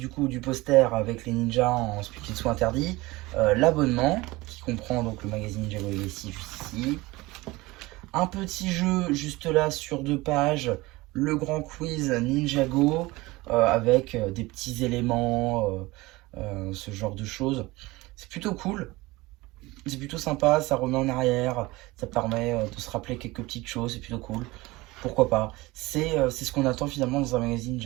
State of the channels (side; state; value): left; quieter; 21.0 dB